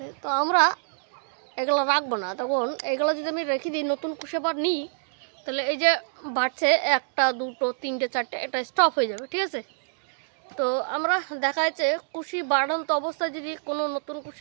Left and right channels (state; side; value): silent; left; digital silence